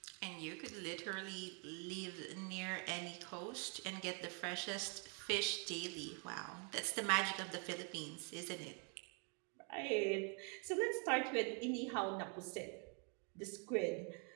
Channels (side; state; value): left; quieter; 37.8 dB